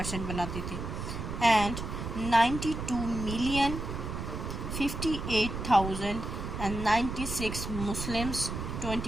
بناتے تھے. اینڈ 92,058,096 مسلمس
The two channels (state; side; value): noise; right; rumble, 5 dB below the sound